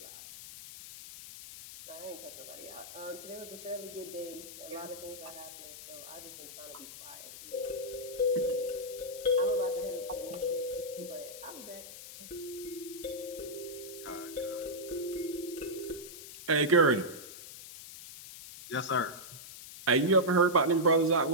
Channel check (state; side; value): noise; left; hiss, 13 dB below the sound